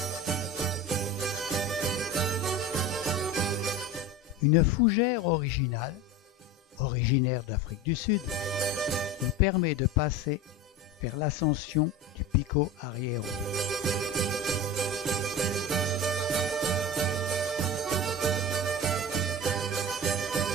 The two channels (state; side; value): normal; both; correlation 0.30